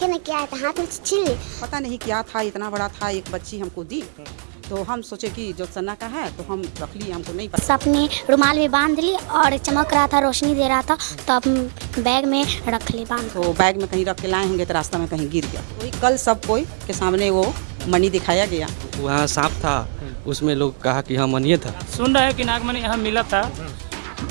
ना क्या था, हाथ में छीन ली। पता नहीं क्या था, इतना बड़ा था, एक बच्ची हमको दी तो हम सोचे कि जो सन्ना का है तो हम रख लिए, हमको नहीं पता। अपनी रुमाल भी बांध ली और चमक रहा था, रोशनी दे रहा था, तो अब बैग में रख ली बांध। तो बैग में कहीं रख के लाए होंगे तो रास्ता में कहीं गिर गया। वही कल सब कोई के सामने वो मनी दिखाया गया। वहाँ सांप था, उसमें लोग कहा कि हाँ मनी था। सुन रहे हैं कि नागमणि यहाँ मिला था,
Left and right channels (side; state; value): left; silent; 65 dB below the other